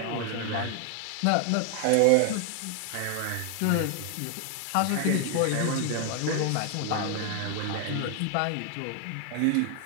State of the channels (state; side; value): different; both; correlation 0.00